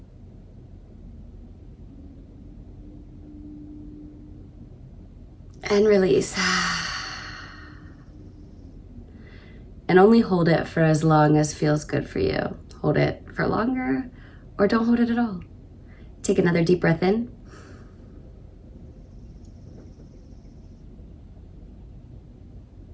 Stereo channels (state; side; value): identical; both; correlation 1.00